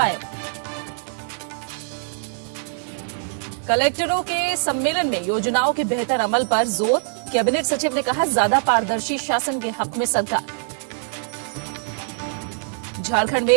कलेक्टरों के सम्मेलन में योजनाओं के बेहतर अमल पर जोर, कैबिनेट सचिव ने कहा ज्यादा पारदर्शी शासन के हक में सरकार। झारखंड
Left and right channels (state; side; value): silent; left; digital silence